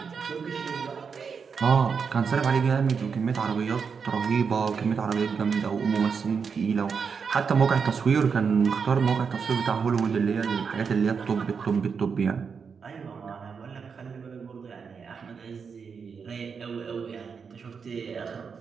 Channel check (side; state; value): left; quieter; 5.9 dB